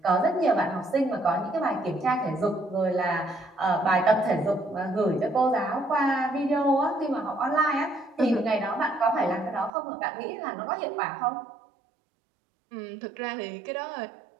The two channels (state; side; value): drops out; left; at 9.7 s